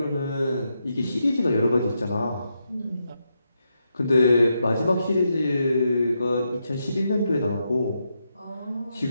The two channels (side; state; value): both; inverted; correlation -0.83